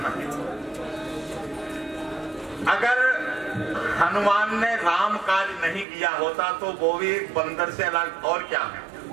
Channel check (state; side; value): drops out; left; at 5.9 s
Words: है। अगर हनुमान ने राम काज नहीं किया होता तो वो भी एक बंदर से अलग और क्या है,